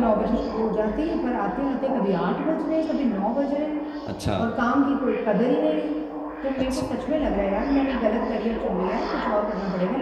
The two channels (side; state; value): both; identical; correlation 1.00